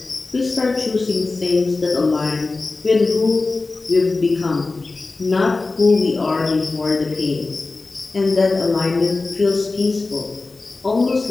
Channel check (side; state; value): right; quieter; 3.6 dB